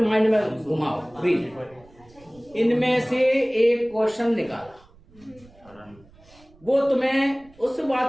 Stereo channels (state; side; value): noise; right; rumble, 27 dB below the sound